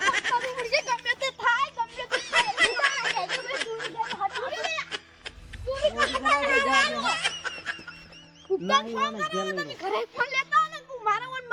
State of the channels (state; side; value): identical; both; correlation 1.00